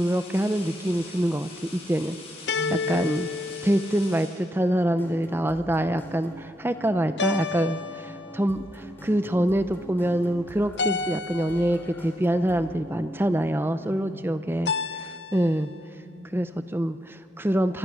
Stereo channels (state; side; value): normal; both; correlation 0.81